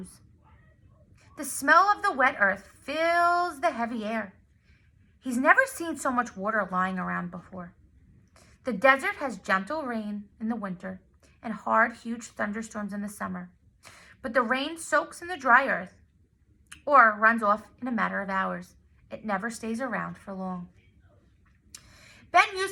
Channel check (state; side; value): identical; both; correlation 1.00